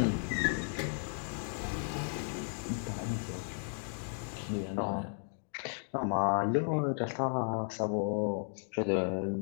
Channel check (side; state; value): right; silent; 55 dB below the other